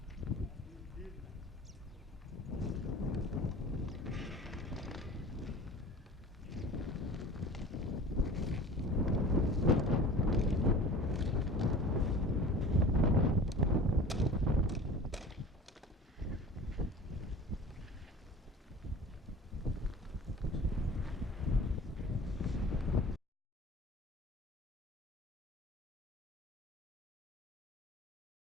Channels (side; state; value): both; normal; correlation 0.41